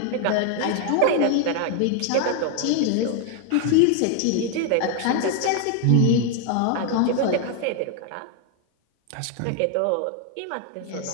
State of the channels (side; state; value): both; different; correlation 0.01